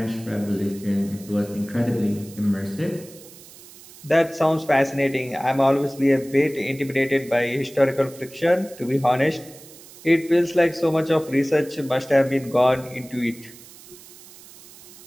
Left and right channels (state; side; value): noise; right; hiss, 20 dB below the sound